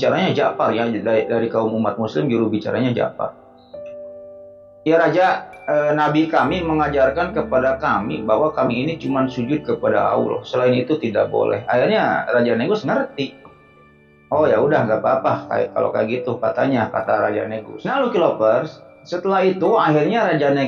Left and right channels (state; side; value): identical; both; correlation 1.00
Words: Ja'far ya, dari kaum umat muslim juru bicaranya Ja'far. Ya Raja, Nabi kami mengajarkan kepada kami bahwa kami ini cuma sujud kepada Allah. Selain itu tidak boleh. Akhirnya Raja Negus ngerti. Oh ya udah nggak apa-apa kalau kayak gitu katanya, kata Raja Negus. Nah Lucky Lovers, setelah itu akhirnya Raja